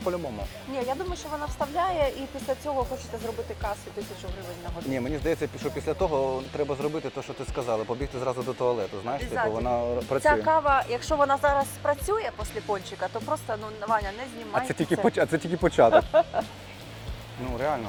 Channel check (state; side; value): identical; both; correlation 1.00